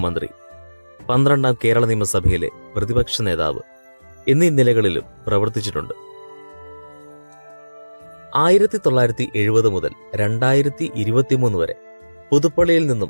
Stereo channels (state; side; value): inverted; both; correlation -1.00